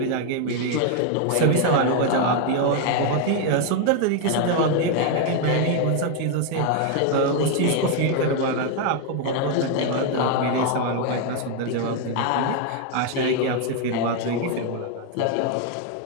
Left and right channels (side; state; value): both; different; correlation 0.01